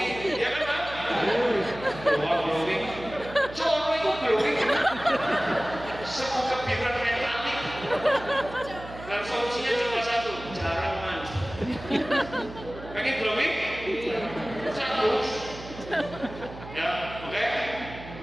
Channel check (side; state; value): right; noise; hum, 14 dB below the sound